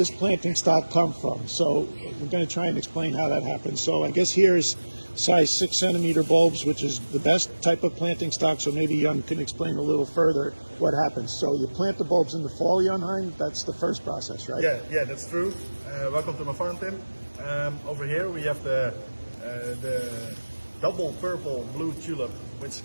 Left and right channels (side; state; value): both; inverted; correlation -1.00